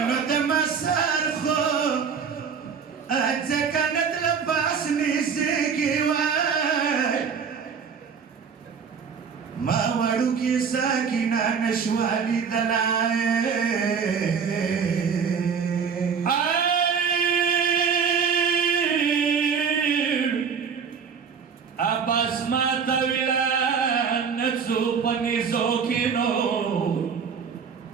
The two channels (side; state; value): left; quieter; 6.4 dB